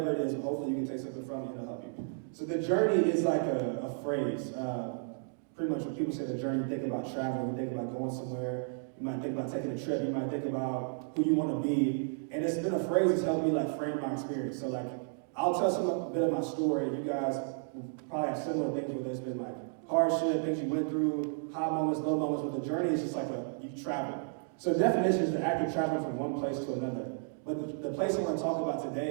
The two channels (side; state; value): left; silent; digital silence